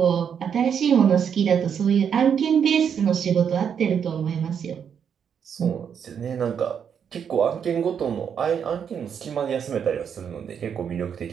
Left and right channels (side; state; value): left; quieter; 7.7 dB